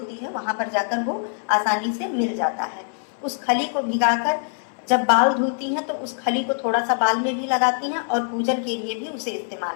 है वहां पर जाकर वो आसानी से मिल जाता है। उस खली को भिगाकर जब बाल धुलती हैं तो उस खली को थोड़ा सा बाल में भी लगाती हैं और पूजन के लिए भी उसे इस्तेमाल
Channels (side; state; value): right; silent; 59 dB below the other